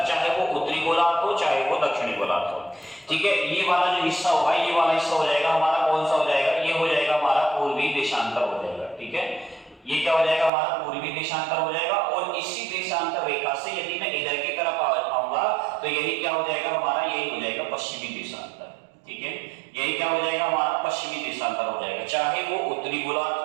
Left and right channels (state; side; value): drops out; left; at 10.5 s